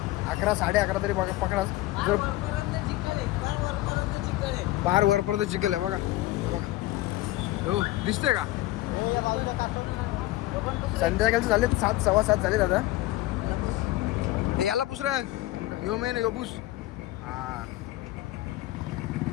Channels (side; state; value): right; quieter; 17.1 dB